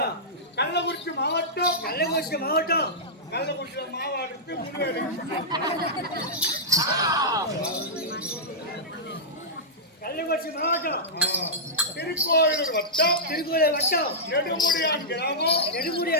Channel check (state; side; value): normal; both; correlation -0.12